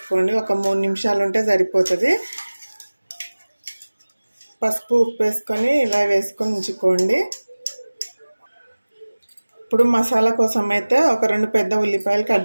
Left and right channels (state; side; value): inverted; both; correlation -1.00